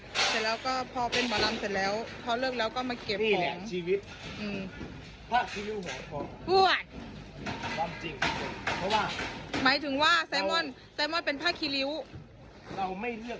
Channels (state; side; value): identical; both; correlation 1.00